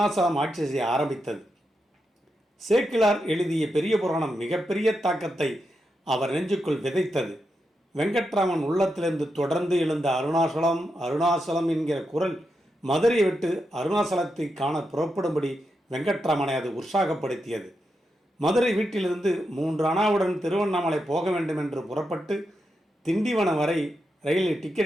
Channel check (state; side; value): normal; both; correlation 0.86